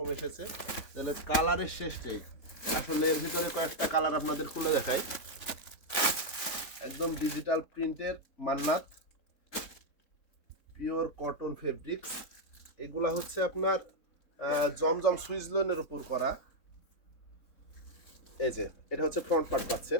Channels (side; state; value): right; late; 3.7 ms